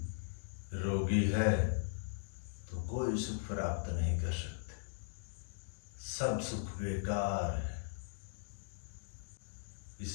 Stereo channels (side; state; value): right; silent; digital silence